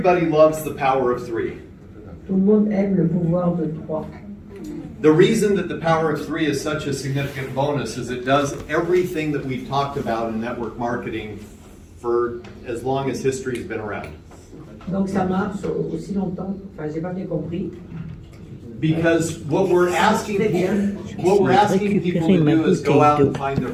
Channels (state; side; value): identical; both; correlation 1.00